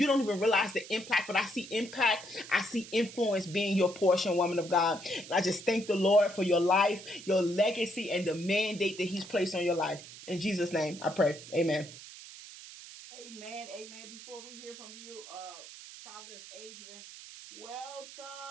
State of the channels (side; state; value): right; noise; hiss, 15 dB below the sound